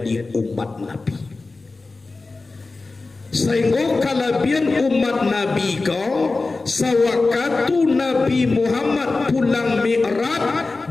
umat Nabi. Sehingga kalabian umat Nabi kau sawakatu Nabi Muhammad pulang Mi'raj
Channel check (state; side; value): quieter; right; 3.6 dB